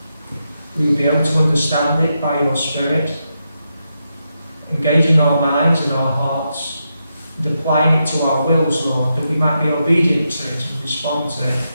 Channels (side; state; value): both; inverted; correlation -0.85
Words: we will be able to understand it by your Spirit, engaging our minds and our hearts, and applying it to our wills, Lord, that we might be obedient to it and respond to it,